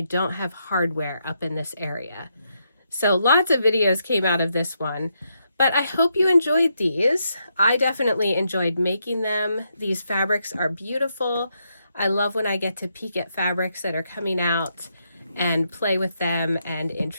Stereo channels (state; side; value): inverted; both; correlation -0.80